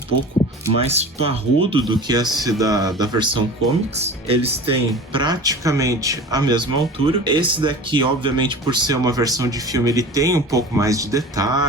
mais parrudo do que esse da versão comics. Eles têm praticamente a mesma altura. Esse daqui, obviamente, por ser uma versão de filme, ele tem um pouco mais de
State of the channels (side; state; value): both; normal; correlation 0.37